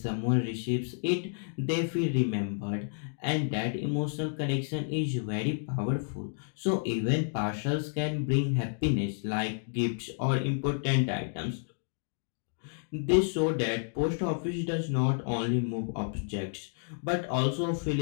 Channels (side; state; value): right; silent; digital silence